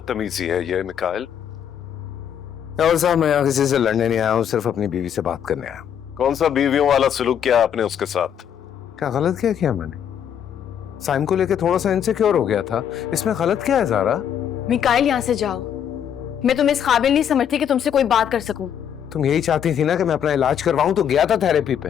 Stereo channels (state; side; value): quieter; right; 8.9 dB